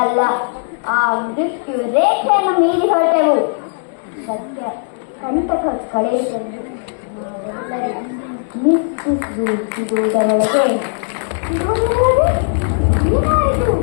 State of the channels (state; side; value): silent; right; digital silence